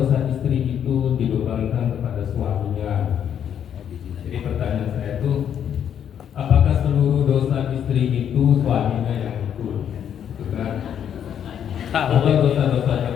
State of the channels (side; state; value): right; quieter; 9.0 dB